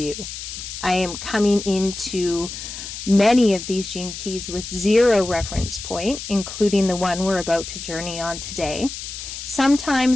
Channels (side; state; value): left; noise; hiss, 9 dB below the sound